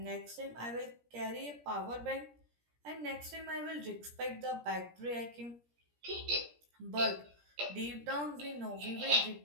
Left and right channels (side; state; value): left; late; 17 ms